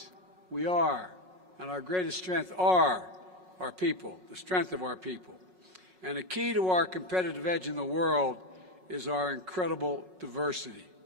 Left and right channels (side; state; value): left; late; 5.5 ms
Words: we are, and our greatest strength are our people, the strength of our people. And the key to our competitive edge in the world is our incredible diversity.